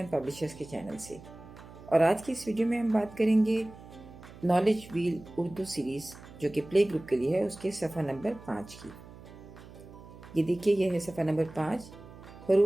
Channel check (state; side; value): noise; right; hum, 18 dB below the sound